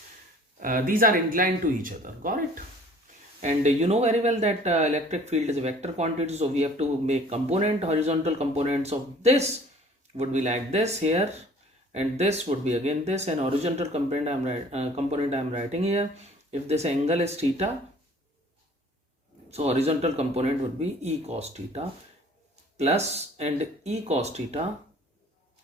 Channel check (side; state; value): both; normal; correlation 0.51